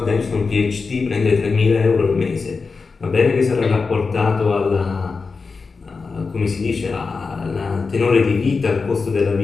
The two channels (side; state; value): right; quieter; 4.6 dB